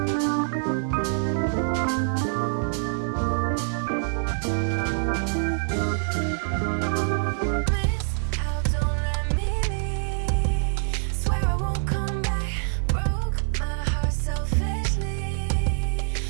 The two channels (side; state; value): left; silent; 61 dB below the other